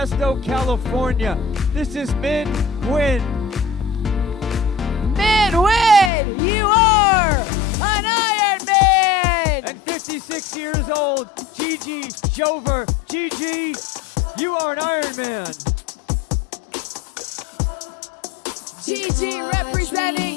California. This is Min Nguyen. Min Nguyen, you are an Ironman! And 56 years old, Gigi Jover. Gigi, you are an Ironman. Gigi representing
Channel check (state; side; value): drops out; right; at 6.1 s